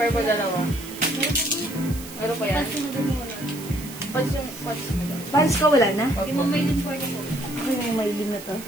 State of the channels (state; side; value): noise; right; hiss, 14 dB below the sound